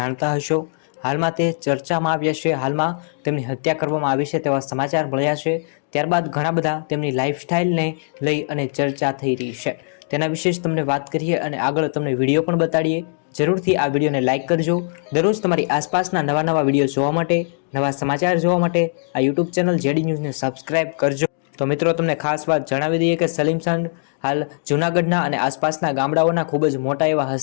હશો। હાલમાં તે ચર્ચામાં આવ્યા છે। હાલમાં તેમની હત્યા કરવામાં આવી છે તેવા સમાચાર મળ્યા છે। ત્યારબાદ ઘણા બધા તેમની લાઈફસ્ટાઈલને લઈ અને ચર્ચા થઈ રહી છે। તેના વિશે જ તમને વાત કરીએ અને આગળ તમને વિડીયો પણ બતાડીએ। જરૂરથી આ વિડીયોને લાઇક કરજો। દરરોજ તમારી આસપાસના નવા વિડીયો જોવા માટે, નવા સમાચાર જોવા માટે આ યુટ્યુબ ચેનલ જેડી ન્યૂઝને સબસ્ક્રાઇબ કરજો। તો મિત્રો, તમને ખાસ વાત જણાવી દઈએ કે સલીમ સાંઢ હાલ જૂનાગઢના અને આસપાસના ગામડાઓના ખૂબ જ મોટા એવા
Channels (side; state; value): right; silent; 65 dB below the other